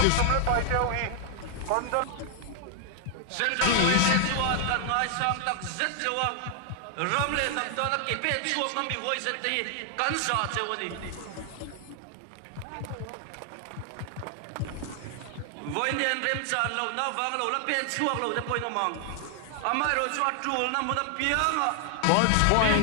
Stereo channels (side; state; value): both; different; correlation 0.00